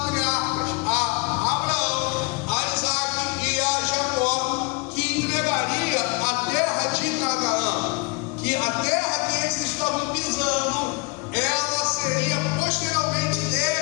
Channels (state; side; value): quieter; right; 28.7 dB